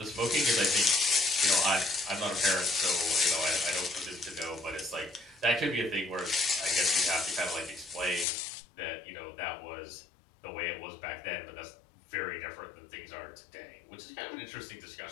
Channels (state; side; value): drops out; right; at 8.2 s